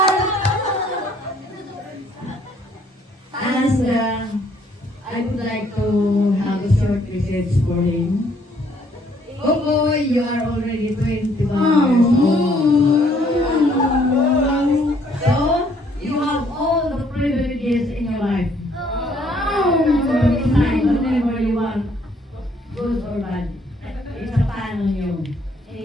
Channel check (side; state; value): both; normal; correlation 0.65